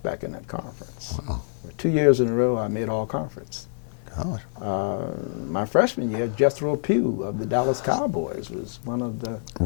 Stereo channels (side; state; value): right; silent; digital silence